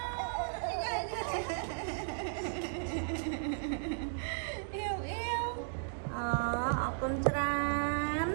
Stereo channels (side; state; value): left; silent; digital silence